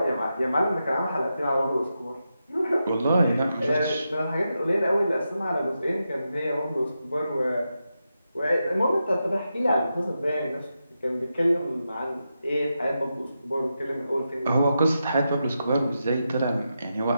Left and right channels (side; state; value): both; inverted; correlation -0.88